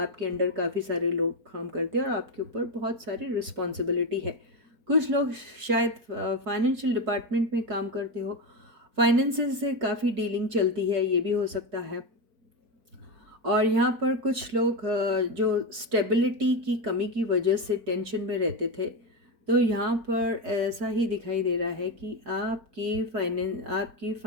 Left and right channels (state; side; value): late; left; 4.4 ms